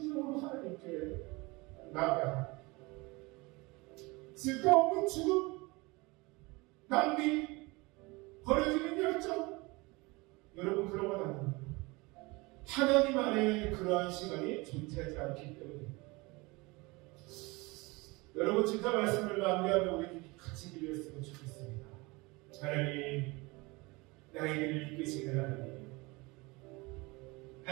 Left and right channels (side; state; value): left; quieter; 24.5 dB